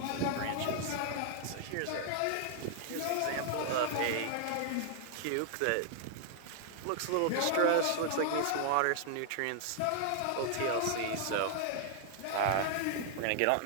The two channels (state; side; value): different; both; correlation -0.01